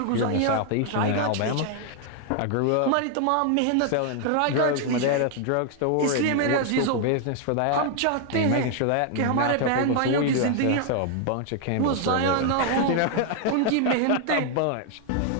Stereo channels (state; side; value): different; both; correlation 0.00